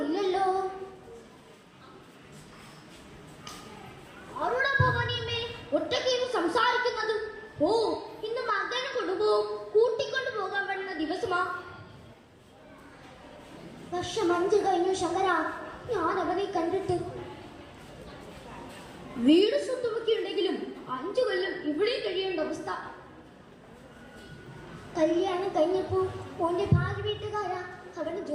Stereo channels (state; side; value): identical; both; correlation 1.00